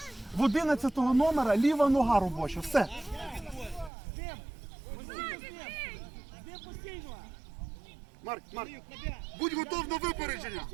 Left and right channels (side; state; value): left; drops out; at 3.9 s